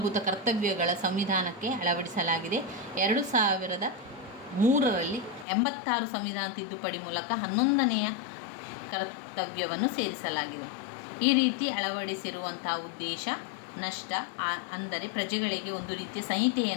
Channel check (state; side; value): drops out; right; at 5.5 s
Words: ಕರ್ತವ್ಯಗಳ ಸಂವಿಧಾನಕ್ಕೆ ಅಳವಡಿಸಲಾಗಿದೆ. 2003ರಲ್ಲಿ 86 ಸಂವಿಧಾನ ತಿದ್ದುಪಡಿ ಮೂಲಕ 11ನೇ ಕರ್ತವ್ಯವನ್ನು ಸೇರಿಸಲಾಗಿದೆ. ಈ ರೀತಿ ಅಳವಡಿಸಿರುವಂಥ ಉದ್ದೇಶ ನಷ್ಟ ಅಂದರೆ ಪ್ರಜೆಗಳಿಗೆ ಒಂದು ರೀತಿಯ